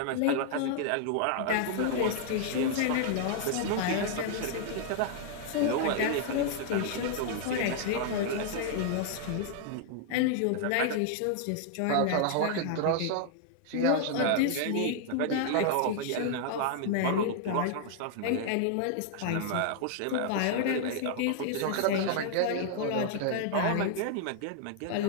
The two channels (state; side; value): different; both; correlation -0.01